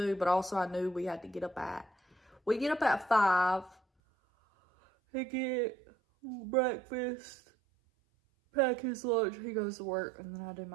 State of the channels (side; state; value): left; drops out; at 3.8 s